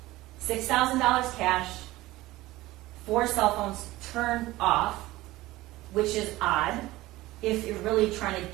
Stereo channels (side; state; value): left; quieter; 18.0 dB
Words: $6,000 cash, 4 cell phones turned off, which is odd if you're really trying to